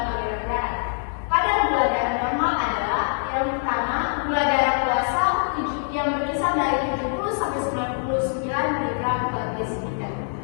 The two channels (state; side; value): silent; right; digital silence